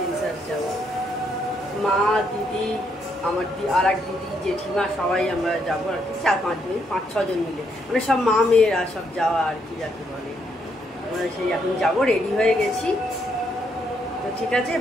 যাবো। মা, দিদি, আমার আর এক দিদি, জেঠিমা, সবাই আমরা যাবো আর কি, 4-5 জন মিলে, মানে সব মা মেয়েরা সব যাওয়া আর কি যাকে বলে। আমরা সেই এখন যাবো, রেডি হয়ে গেছি। তো ঠিক আছে,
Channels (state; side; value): normal; both; correlation 0.75